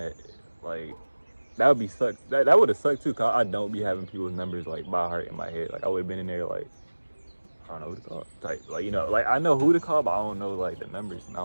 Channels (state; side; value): inverted; both; correlation -1.00